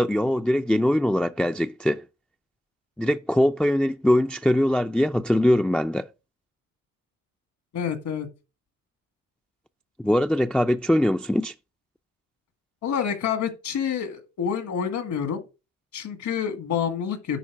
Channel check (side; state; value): both; normal; correlation 0.85